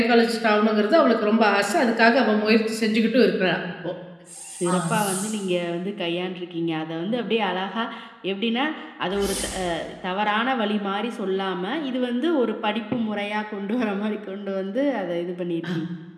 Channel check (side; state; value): both; identical; correlation 1.00